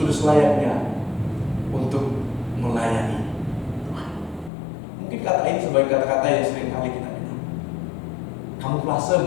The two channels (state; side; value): drops out; right; at 4.5 s